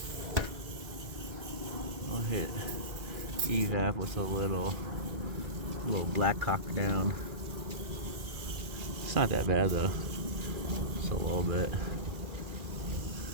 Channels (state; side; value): late; left; 2.5 ms